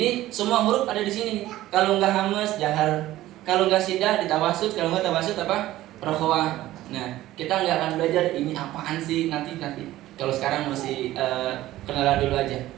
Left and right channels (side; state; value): left; quieter; 15.3 dB